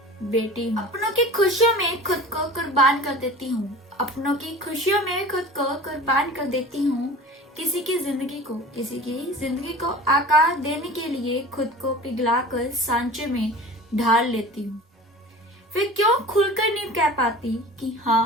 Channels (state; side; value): normal; both; correlation 0.38